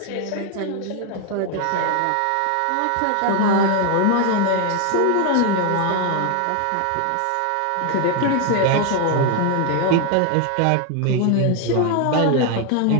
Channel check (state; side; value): different; both; correlation 0.01